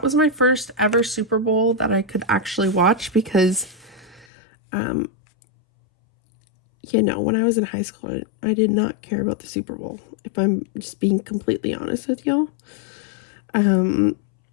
was my first ever Super Bowl that I could actually watch because you know, when I was in high school, I did not care about the Super Bowl, if I'm just being completely honest with y'all.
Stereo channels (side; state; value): right; drops out; at 4.2 s